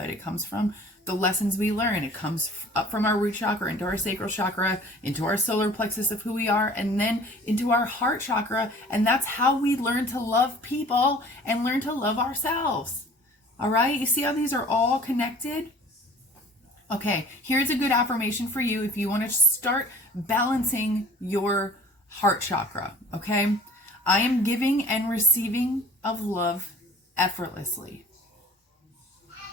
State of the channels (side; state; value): both; normal; correlation 0.48